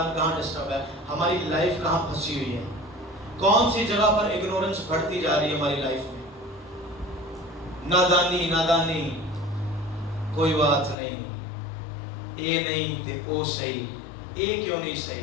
کہاں ڈسٹرب ہے، ہماری لائف کہاں پھنسی ہوئی ہے، کون سی جگہ پر اگنورنس بڑھتی جا رہی ہے ہماری لائف میں۔ نادانی نادانی، کوئی بات نہیں، اے نہیں تے او صحیح، اے کیوں نہیں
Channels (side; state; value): right; drops out; at 11.0 s